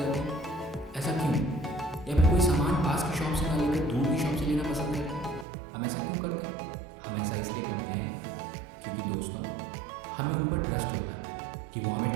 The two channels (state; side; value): drops out; left; at 5.5 s